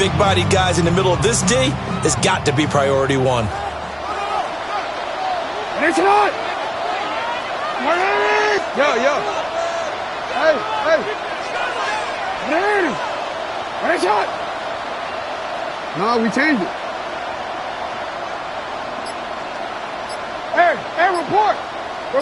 guys in the middle of this D, has got to be priority 1. It's not. Yo. Hey. What a shot. No, we changed it. Hey, report.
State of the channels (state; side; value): identical; both; correlation 1.00